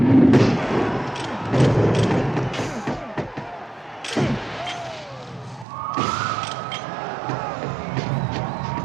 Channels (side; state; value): left; drops out; at 5.7 s